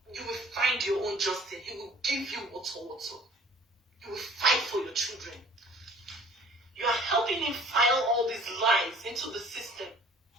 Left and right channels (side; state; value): both; normal; correlation 0.52